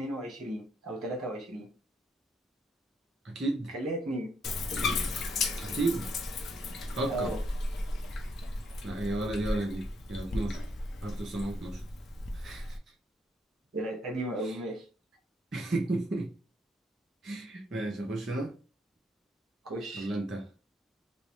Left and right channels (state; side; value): normal; both; correlation 0.74